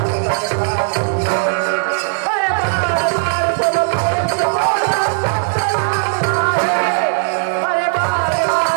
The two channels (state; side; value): silent; left; digital silence